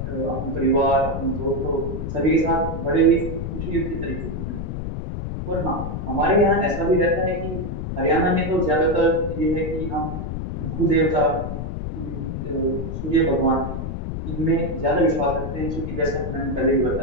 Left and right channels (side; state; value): left; noise; rumble, 5 dB below the sound